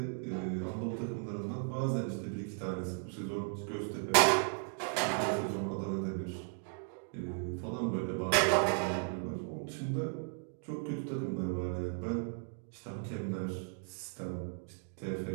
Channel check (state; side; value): silent; left; 54 dB below the other